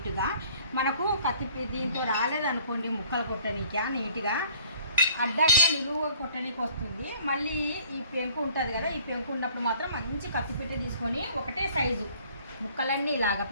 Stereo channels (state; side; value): inverted; both; correlation -0.54